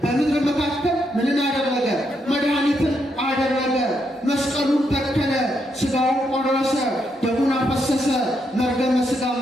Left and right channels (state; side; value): normal; both; correlation 0.79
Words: በምድር መካከል ምንን አደረገ? መድኃኒትን አደረገ። መስቀሉን ተከለ፣ ሥጋውን ቆረሰ፣ ደሙን አፈሰሰ፣ መርገመ ሥጋ